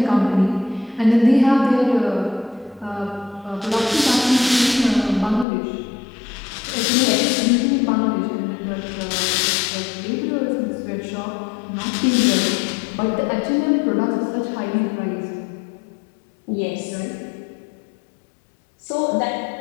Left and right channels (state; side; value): drops out; right; at 5.5 s